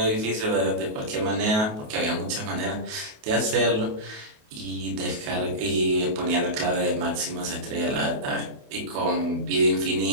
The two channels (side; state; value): left; late; 28 ms